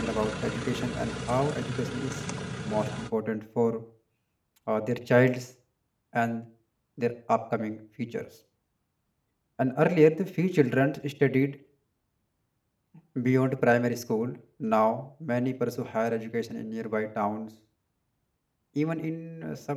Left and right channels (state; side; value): identical; both; correlation 1.00